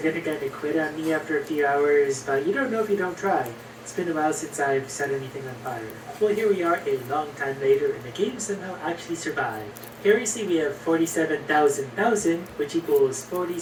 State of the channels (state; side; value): identical; both; correlation 1.00